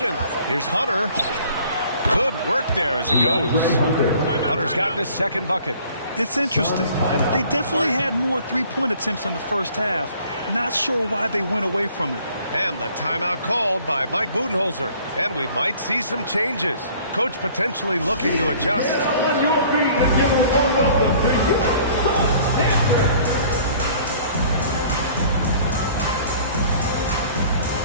Here's Hunter. Good work there as it goes. Hunter's gotten his second bucket. It's interesting. They definitely had more three-point attempts in the first half. Not sure why they went away from it. And the timeout called by Mike Budenholzer. And we might see some changes. Coach potentially looking to adjust. Get on your feet and give them a welcome to you.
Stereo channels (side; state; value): both; inverted; correlation -0.53